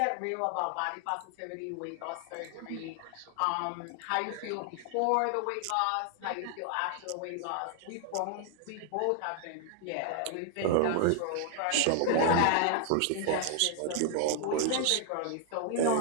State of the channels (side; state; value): both; different; correlation 0.00